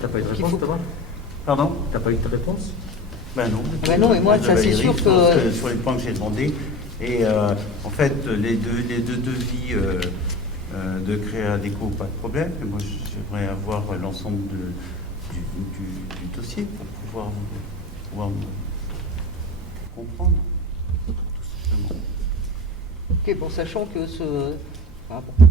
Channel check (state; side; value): normal; both; correlation 0.32